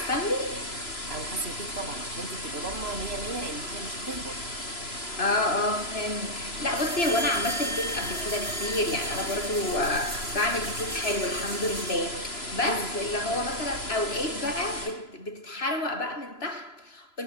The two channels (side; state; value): right; late; 3.0 ms